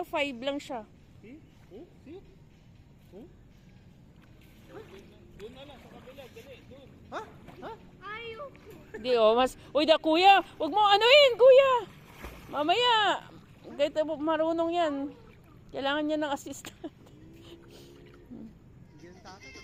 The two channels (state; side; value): identical; both; correlation 1.00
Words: 5 lang siya. See? Oh, see? Oh? Doon na lang sa kabila. Dali, doon. Ha? Ha? Hindi, oh. Uy, kuya. Huwag mo anuhin, kuya. Mamaya. Kahit marunong yan. Kailangan niya ng assistant.